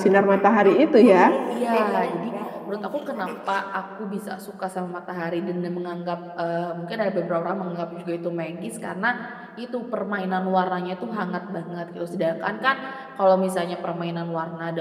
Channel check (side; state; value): both; identical; correlation 1.00